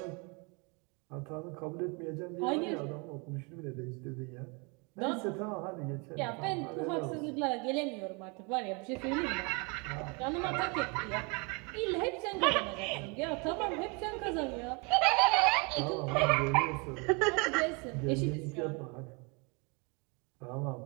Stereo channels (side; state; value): left; quieter; 31.2 dB